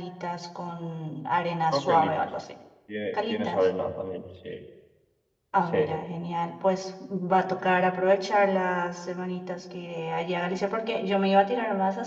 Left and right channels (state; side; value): identical; both; correlation 1.00